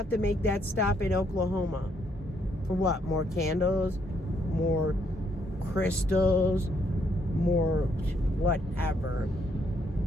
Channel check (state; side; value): normal; both; correlation 0.72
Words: to make that stop in Oklahoma? For what? More candles? More crystals? More whatever.